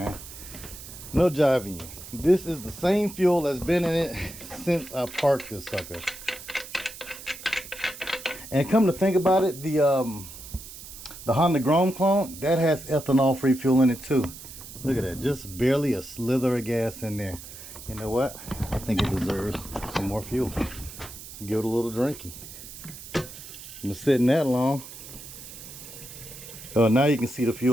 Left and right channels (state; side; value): noise; right; hiss, 14 dB below the sound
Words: No jiving you. This is the same fuel that's been in it since I parked this sucker. And come to think about it, the Honda Grom clone, that has ethanol-free fuel in it too. Look at that, just barely a slither of gas in there. You know what? I think it deserves some more fuel. Let's give it a little drinky. Been sitting that long. Oh, now you can see the